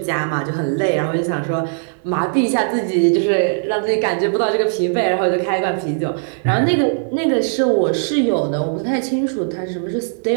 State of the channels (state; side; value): silent; left; digital silence